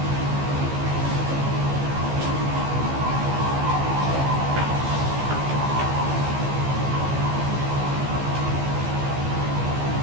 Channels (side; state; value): left; late; 15 ms